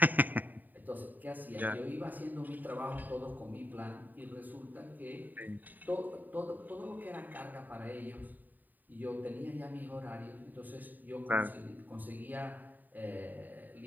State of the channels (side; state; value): left; late; 0.087 ms